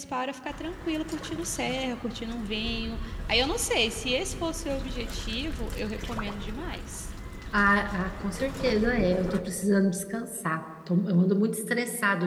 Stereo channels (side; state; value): both; identical; correlation 1.00